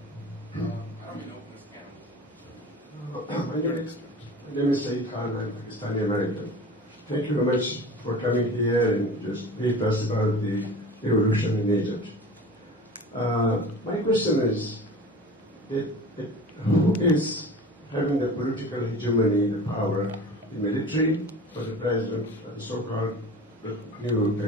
I don't know who's counting. My name is Saeed Khan. I'm Pakistani American. Thank you very much for coming here and just brief us about the revolution in Egypt. My question is, who is having the political hegemony, the power, the military, or the president, the so-called new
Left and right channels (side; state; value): both; normal; correlation 0.38